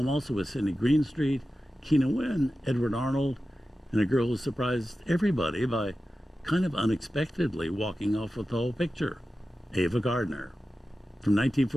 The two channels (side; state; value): both; normal; correlation 0.93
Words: also with Sidney Greenstreet, Keena Wynn, Edward Arnold, and a girl who surprised everybody by kind of unexpectedly walking off with the whole picture, Ava Gardner. From